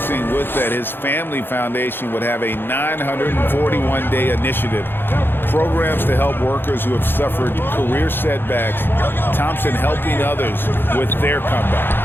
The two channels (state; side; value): late; right; 0.10 ms